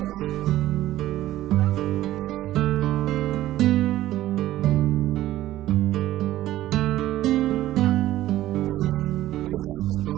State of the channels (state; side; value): quieter; left; 14.6 dB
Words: supply. Next, I'll connect the